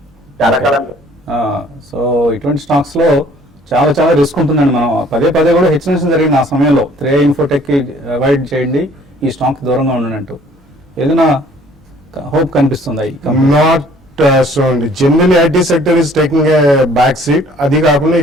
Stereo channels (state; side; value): normal; both; correlation 0.56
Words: చాలా కాలం. సో ఇటువంటి స్టాక్స్ లో చాలా రిస్క్ ఉంటుందండి. మనం పదే కూడా హెచ్చరించడం జరిగింది ఆ సమయంలో. 3 Infotech కి అవాయిడ్ చేయండి, ఈ స్టాక్ దూరంగా ఉండనంటూ. ఏదైనా హోప్ కనిపిస్తుందా? నాట్ సో అండి. General IT sector is taking a back seat. అది కాకుండా